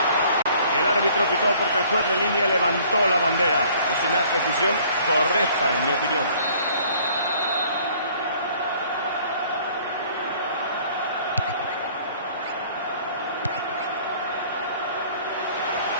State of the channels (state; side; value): inverted; both; correlation -0.56